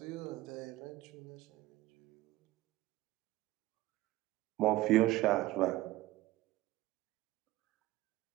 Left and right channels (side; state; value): left; quieter; 17.2 dB